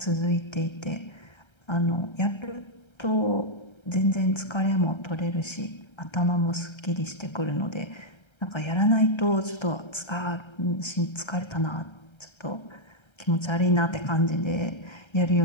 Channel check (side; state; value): right; late; 1.3 ms